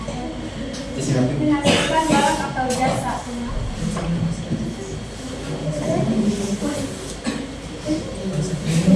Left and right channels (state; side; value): identical; both; correlation 1.00